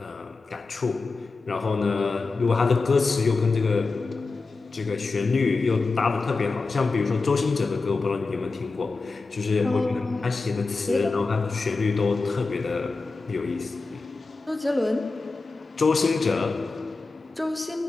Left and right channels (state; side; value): quieter; right; 3.9 dB